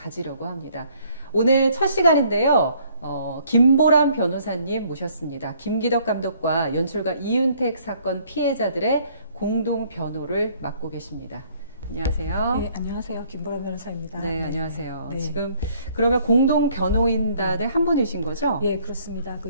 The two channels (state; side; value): inverted; both; correlation -0.62